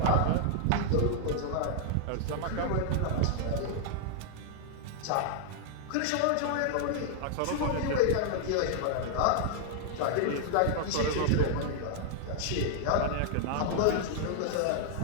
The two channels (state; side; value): different; both; correlation -0.01